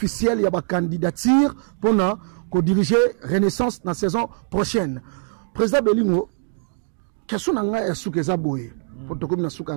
il y a une candidature pour diriger Renaissance dans la saison prochaine. Président Belingo, question n'a sous que ça boye. Pour te comme na sous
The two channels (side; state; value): left; silent; digital silence